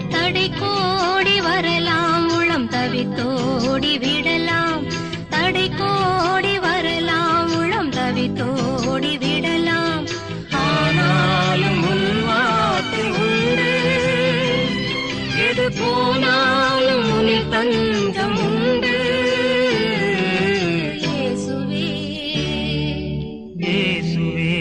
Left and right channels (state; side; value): identical; both; correlation 1.00